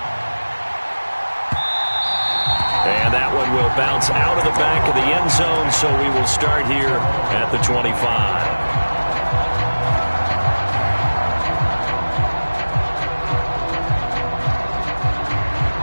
And that one will bounce out of the back of the end zone, so we will start here at the 25.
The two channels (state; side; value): inverted; both; correlation -1.00